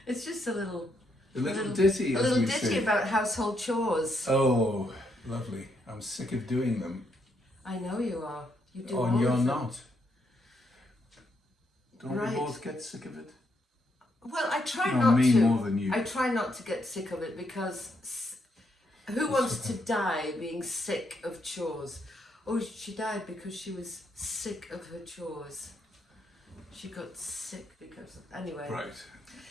It's just a little ditty, a little ditty about household chores. Oh, lovely. I'm sick of doing them. I know you are. You do Oh, all and you're of them. not. Don't Right. we both get sick of it? Well, I try No, not me to. more than you. I try not to get sick of it because who wants to die being sick of chores? Oh, she died because she was sick of her chores. She got sick because anyway. Right.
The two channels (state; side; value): normal; both; correlation 0.77